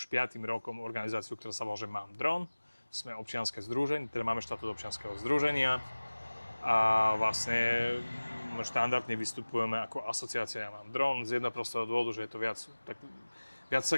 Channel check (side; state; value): both; inverted; correlation -1.00